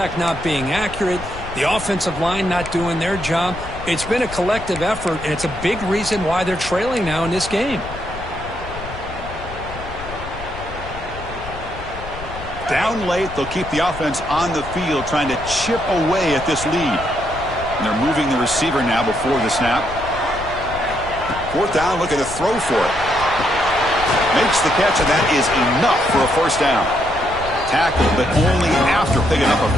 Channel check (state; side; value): noise; left; rumble, 12 dB below the sound